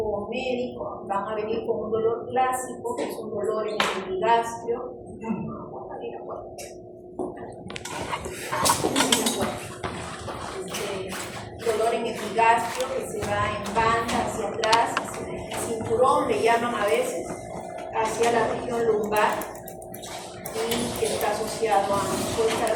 médico, van a venir con un dolor clásico, que es un dolor en el epigastrio. Dolor en epigastrio que se va en banda hacia atrás, hacia el cinturón, le llaman a veces, hacia la región lumbar, y que está asociado puede estar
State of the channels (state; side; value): identical; both; correlation 1.00